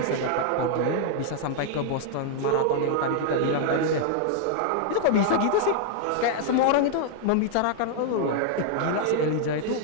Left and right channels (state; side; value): different; both; correlation -0.01